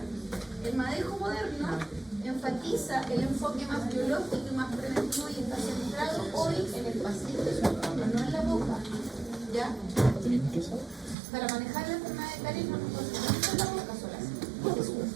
El manejo moderno enfatiza el enfoque más biológico y más preventivo y está centrado hoy en el paciente, no en la boca, ¿ya? Para manejar la enfermedad de caries no nos concentramos en la boca sola, es un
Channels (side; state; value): left; drops out; at 11.2 s